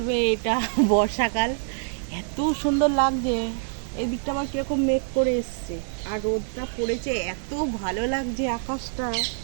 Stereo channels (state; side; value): silent; left; digital silence